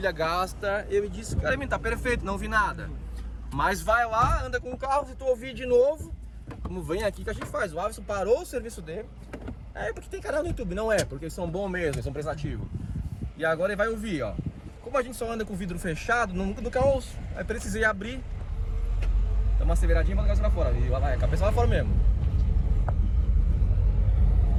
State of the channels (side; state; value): both; identical; correlation 1.00